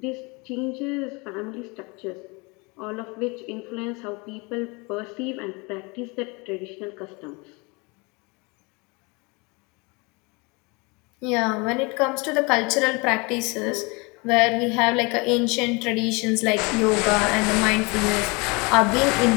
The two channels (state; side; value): quieter; right; 28.1 dB